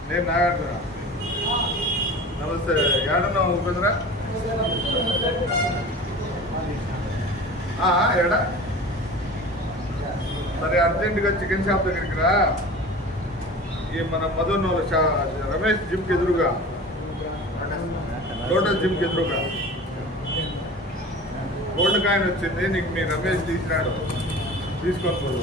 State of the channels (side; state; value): both; normal; correlation 0.37